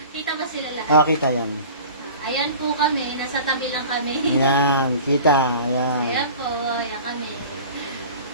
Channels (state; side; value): inverted; both; correlation -0.41